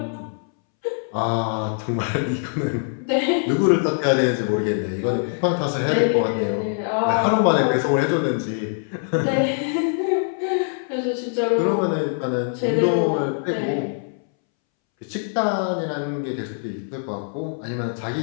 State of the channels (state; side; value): silent; right; 64 dB below the other